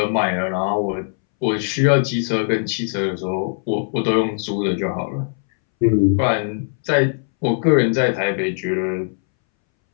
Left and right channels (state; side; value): silent; right; 64 dB below the other